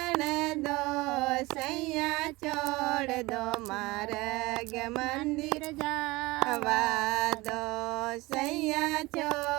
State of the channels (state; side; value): quieter; left; 21.8 dB